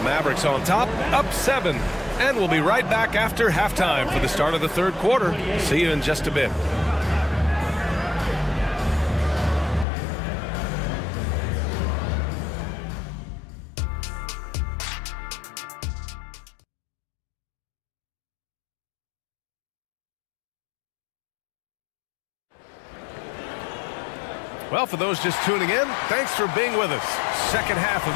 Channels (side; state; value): right; drops out; at 9.9 s